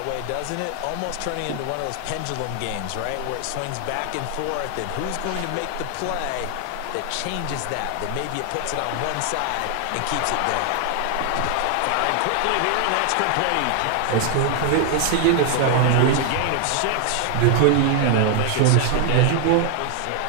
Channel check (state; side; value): different; both; correlation 0.00